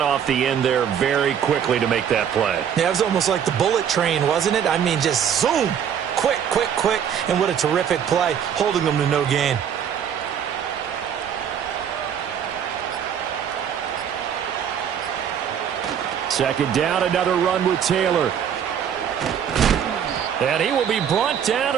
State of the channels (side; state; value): left; quieter; 8.5 dB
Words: the end there very quickly to make that play. Yeah, it was almost like the bullet train, wasn't it? I mean, just zoom. Quick, quick, quick. And what a terrific play, holding them to no gain. Second down, another run with Taylor. And he will be brought down